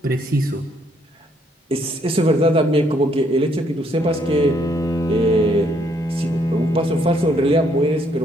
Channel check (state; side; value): normal; both; correlation 0.70